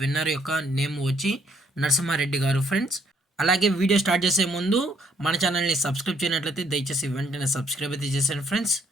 విన్నర్ యొక్క నేమ్ వచ్చి నరసింహారెడ్డి గారు ఫ్రెండ్స్. అలాగే వీడియో స్టార్ట్ చేసే ముందు మన ఛానల్ని సబ్స్క్రైబ్ చేయనట్లయితే దయచేసి వెంటనే సబ్స్క్రైబ్ అయితే చేశాను friends.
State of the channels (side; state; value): both; normal; correlation 0.67